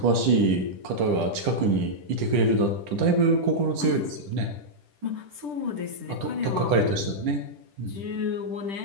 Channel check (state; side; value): late; left; 10 ms